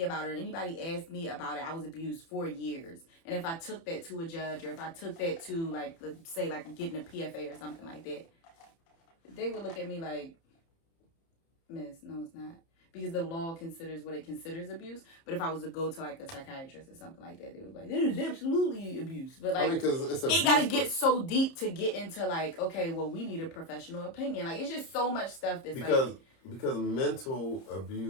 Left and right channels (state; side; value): late; right; 30 ms